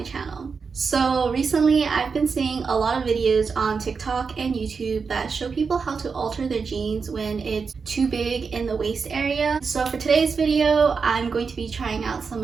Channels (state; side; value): quieter; left; 5.3 dB